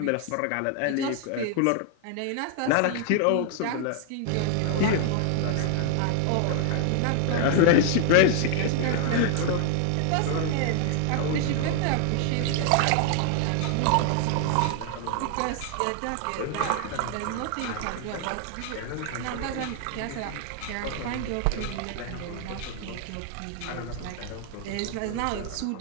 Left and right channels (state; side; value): different; both; correlation 0.00